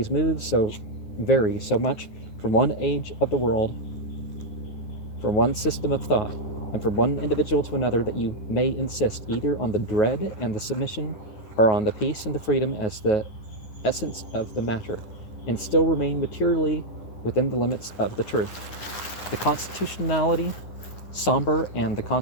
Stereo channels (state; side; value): late; right; 9.5 ms